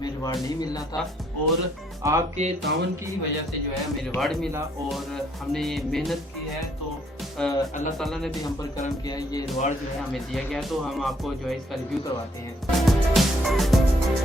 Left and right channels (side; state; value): both; normal; correlation 0.68